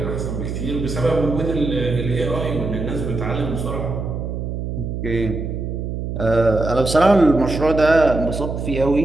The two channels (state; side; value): noise; right; hum, 4 dB below the sound